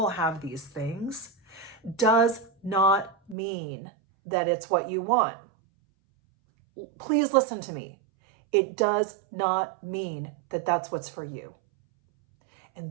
have these things, does not mean that it's what you want. Please listen to me. It does not mean that that's what's for you.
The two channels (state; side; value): drops out; left; at 3.4 s